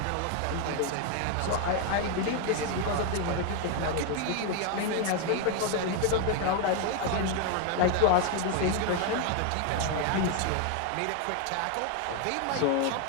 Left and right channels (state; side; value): different; both; correlation 0.01